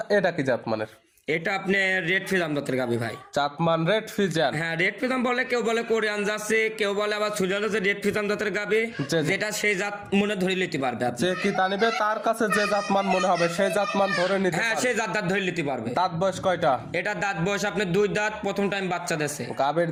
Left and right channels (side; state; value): both; identical; correlation 1.00